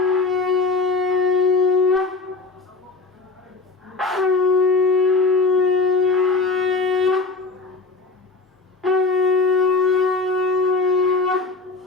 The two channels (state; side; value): quieter; right; 3.9 dB